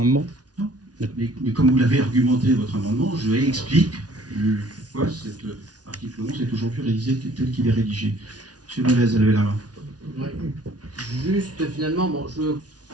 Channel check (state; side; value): late; left; 0.69 ms